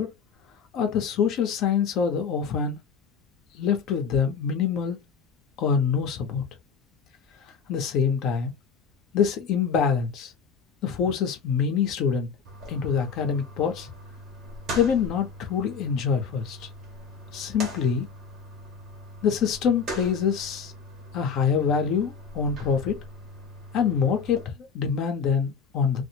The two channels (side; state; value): right; quieter; 6.3 dB